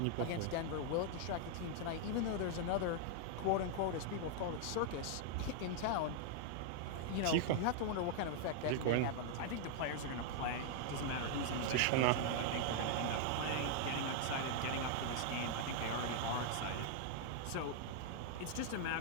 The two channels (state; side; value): different; both; correlation 0.00